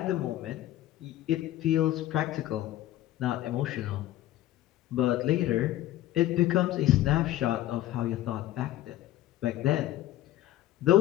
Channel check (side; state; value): right; quieter; 14.1 dB